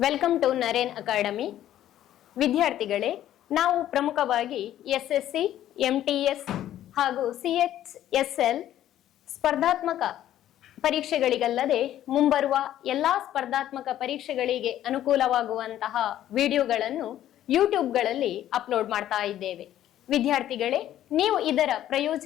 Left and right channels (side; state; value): right; quieter; 12.2 dB